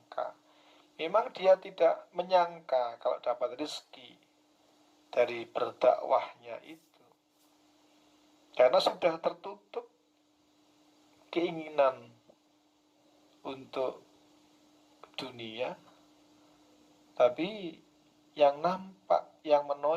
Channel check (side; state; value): both; identical; correlation 1.00